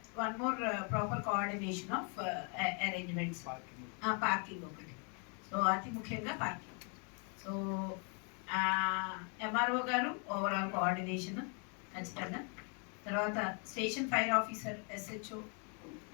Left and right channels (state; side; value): quieter; right; 38.2 dB